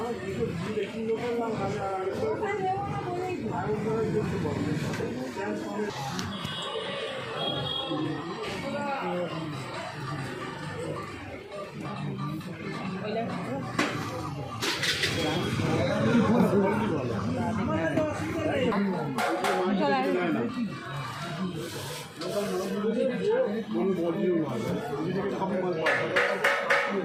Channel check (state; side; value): identical; both; correlation 1.00